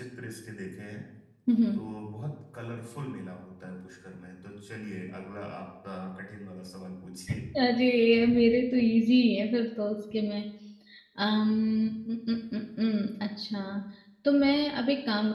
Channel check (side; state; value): both; identical; correlation 1.00